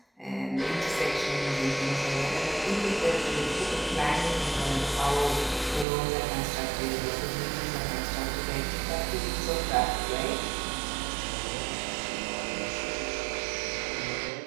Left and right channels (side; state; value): left; drops out; at 5.9 s